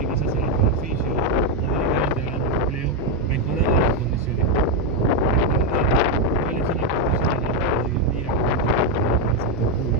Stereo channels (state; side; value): normal; both; correlation 0.04